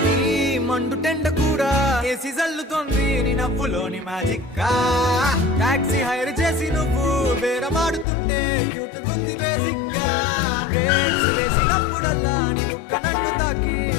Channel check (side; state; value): right; drops out; at 8.1 s